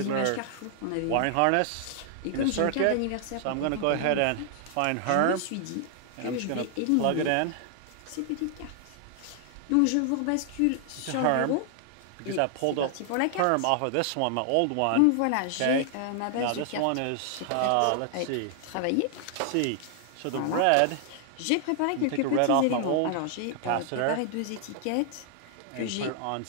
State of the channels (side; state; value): both; different; correlation 0.00